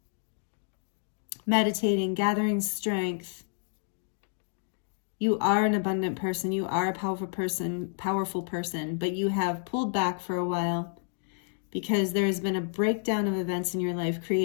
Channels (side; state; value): right; silent; 58 dB below the other